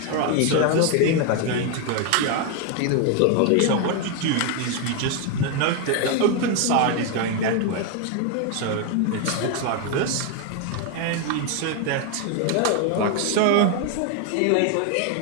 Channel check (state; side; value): different; both; correlation 0.01